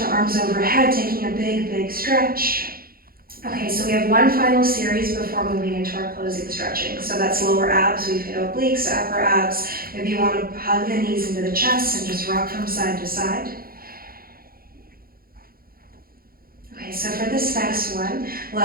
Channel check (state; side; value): late; left; 0.43 ms